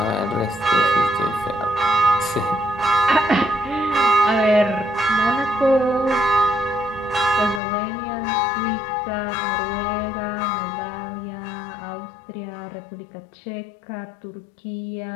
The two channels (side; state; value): right; drops out; at 7.6 s